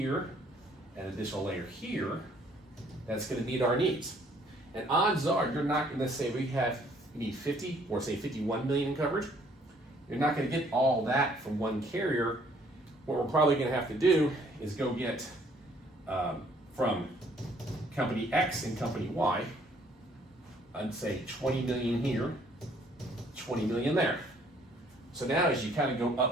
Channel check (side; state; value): both; normal; correlation 0.62